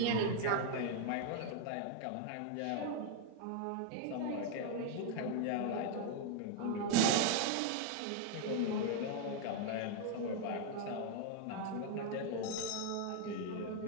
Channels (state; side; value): different; both; correlation 0.00